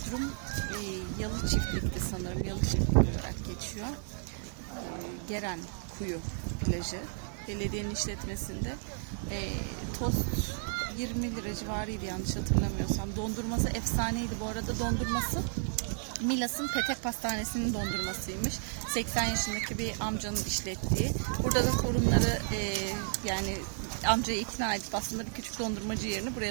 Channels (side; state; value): left; silent; 56 dB below the other